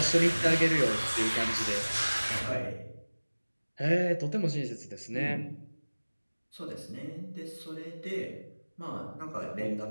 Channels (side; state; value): both; inverted; correlation -1.00